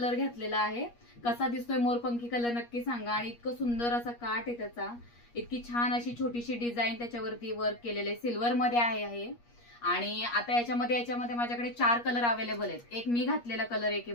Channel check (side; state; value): right; late; 8.4 ms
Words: घेतलेला आहे. कसा दिसतोय मोरपंखी कलर नक्की सांगा. आणि इतकं सुंदर असा काठ आहे त्याचा, इतकी छान अशी छोटीशी डिझाईन त्याच्यावरती वर्क केलेले, सिल्वर मध्ये आहे. आणि आता याच्यामध्ये माझ्याकडे 4 कलर अवेलेबल आहेत. एक मी घातलेला कलर आहे